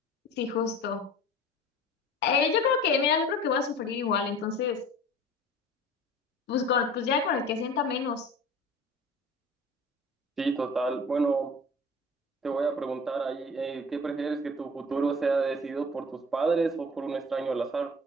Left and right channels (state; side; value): normal; both; correlation 0.42